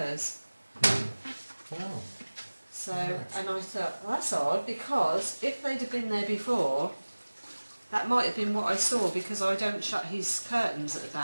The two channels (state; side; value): inverted; both; correlation -1.00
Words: Wow. So, and I thought, well, that's odd, because if they'd have been there before, that might have been what I saw, because I don't shut his curtains at the